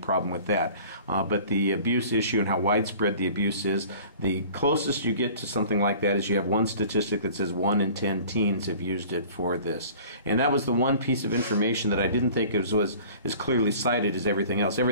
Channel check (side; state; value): both; inverted; correlation -0.46